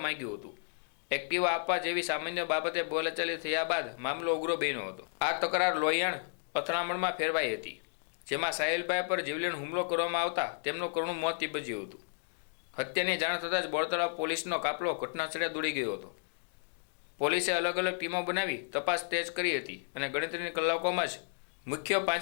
માંગ્યું હતું। એક્ટિવા આપવા જેવી સામાન્ય બાબતે બોલાચાલી થયા બાદ મામલો ઉગ્ર બન્યો હતો। આ તકરાર લોહિયાણ અથડામણમાં ફેરવાઈ હતી, જેમાં સાહિલભાઈ પર જીવલેણ હુમલો કરવામાં આવતા તેમનું કરુણ મોત નીપજ્યું હતું। હત્યાની જાણ થતાં જ બોરતળાવ પોલીસનો કાફલો ઘટનાસ્થળે દોડી ગયો હતો। પોલીસે અલગ અલગ ટીમો બનાવી તપાસ તેજ કરી હતી અને ગણતરીની કલાકોમાં જ મુખ્ય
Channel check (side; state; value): right; silent; digital silence